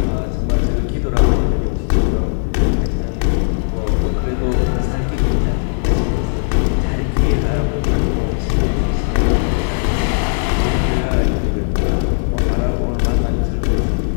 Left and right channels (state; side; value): silent; right; digital silence